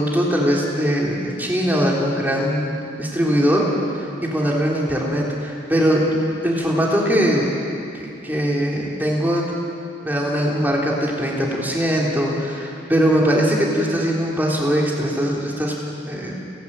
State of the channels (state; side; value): normal; both; correlation 0.73